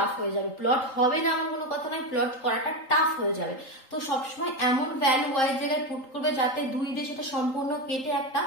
হয়ে যাবে। প্লট হবে না এমন কোনো কথা নাই, প্লট করাটা টাফ হয়ে যাবে। তো সবসময় এমন ভ্যালু y এর জায়গায় পুট করবে যাতে 2 দিয়ে সেটা সম্পূর্ণ কেটে একটা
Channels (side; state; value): right; late; 3.8 ms